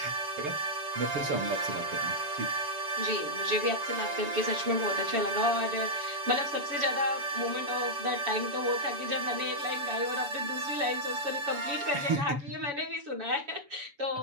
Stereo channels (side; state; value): left; late; 7.1 ms